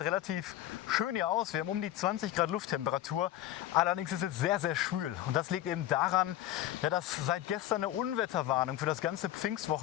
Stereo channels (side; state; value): right; quieter; 13.2 dB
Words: relativ schön hier aus, wir haben um die 20 Grad Lufttemperatur, allerdings ist es sehr, sehr schwül. Und das liegt eben daran, ja, dass seit gestern eine Unwetterwarnung für das ganze